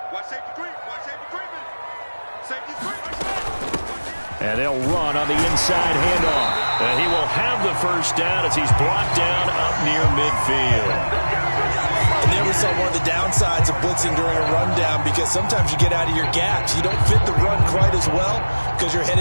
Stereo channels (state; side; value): inverted; both; correlation -1.00